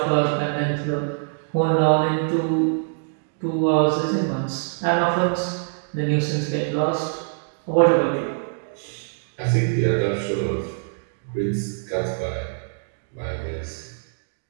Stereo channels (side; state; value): left; silent; digital silence